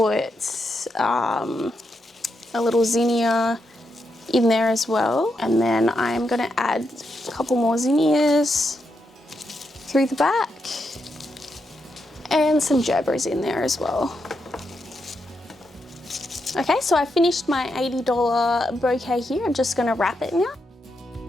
a little zinnia in there as well. And then I'm gonna add a couple more zinnias through the back. And some gerberas in there as well. Okay, so I finished my $80 bouquet here. I'm just gonna wrap it now.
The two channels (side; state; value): both; normal; correlation 0.83